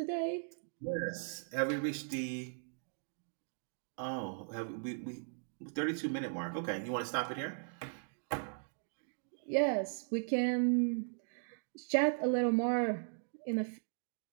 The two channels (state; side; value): silent; left; digital silence